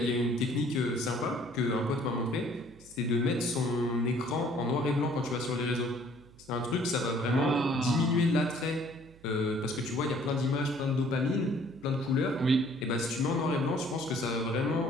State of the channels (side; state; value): right; noise; hum, 24 dB below the sound